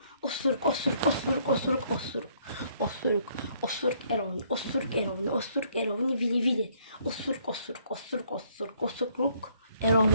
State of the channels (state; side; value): inverted; both; correlation -0.66